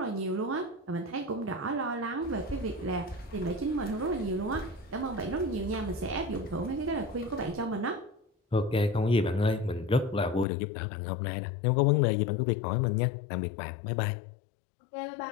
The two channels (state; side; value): drops out; right; at 10.5 s